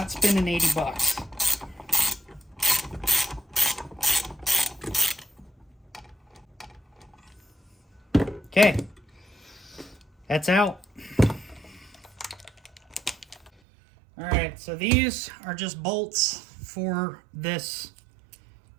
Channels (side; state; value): left; drops out; at 13.5 s